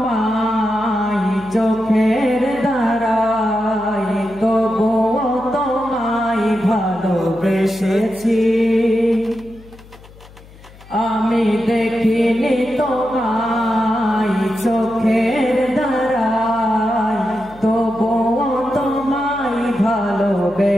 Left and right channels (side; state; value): left; noise; hum, 22 dB below the sound